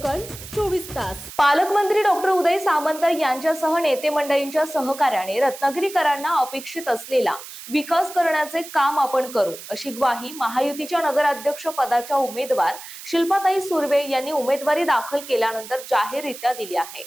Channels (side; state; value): right; noise; hiss, 14 dB below the sound